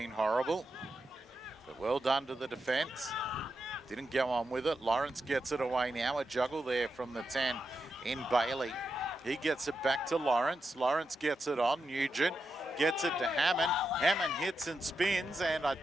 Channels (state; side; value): normal; both; correlation 0.86